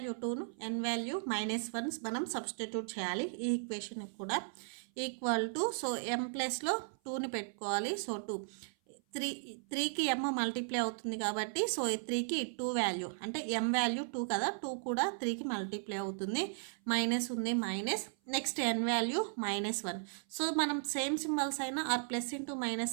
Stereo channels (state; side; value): silent; left; 54 dB below the other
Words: 2ను n వాల్యూ -1 మనం సబ్స్టిట్యూట్ చేయాలి. ఈ ఈక్వేషన్ కూడా ఈక్వల్ టు, సో m ప్లస్లో 2ని పెట్టుకోవాలి. సో 2, 3కి m మల్టిప్లై అవుతుంది కాబట్టి సో 3కి 2 వాల్యూ అంటే m వాల్యూ 2 కదా, 2 కూడా 3కి మల్టిప్లై అవుతుంది. మైనస్ ఉంది, minus. Next n value -1. So మనం సేమ్ సింబల్స్ అయినా ఆర్ ప్లస్ ఇంటూ